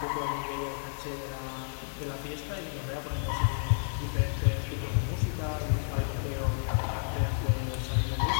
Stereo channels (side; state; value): right; silent; 57 dB below the other